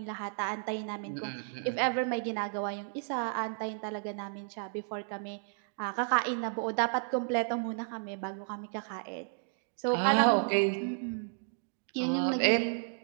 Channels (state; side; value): silent; left; digital silence